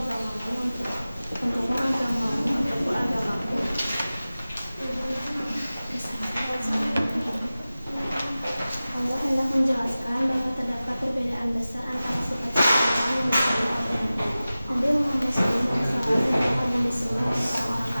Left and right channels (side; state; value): both; inverted; correlation -0.96